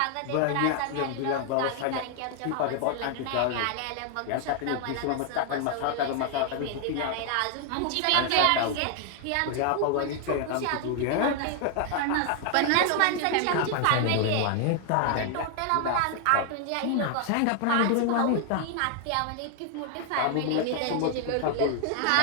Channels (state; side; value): different; both; correlation 0.00